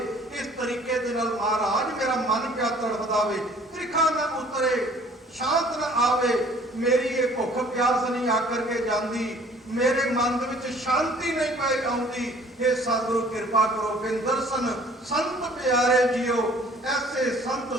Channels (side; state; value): both; normal; correlation 0.54